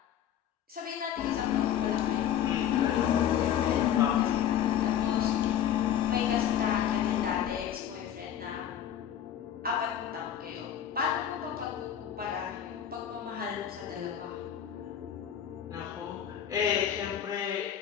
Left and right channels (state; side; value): quieter; right; 10.0 dB